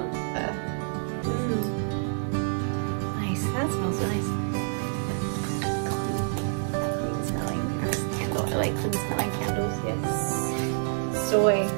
Nice. That smells nice. Clean smelling candle. I like clean smelling candles. Yes. Soy.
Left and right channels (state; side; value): silent; left; digital silence